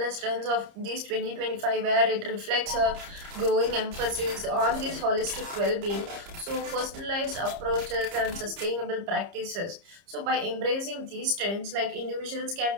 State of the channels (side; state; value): left; late; 30 ms